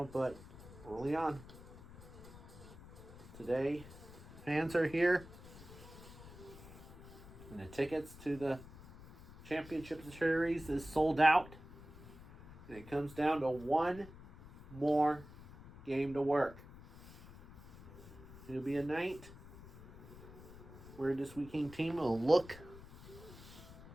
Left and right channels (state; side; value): noise; left; rumble, 17 dB below the sound